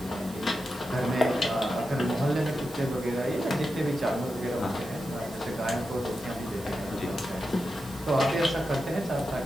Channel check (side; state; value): right; noise; hiss, 19 dB below the sound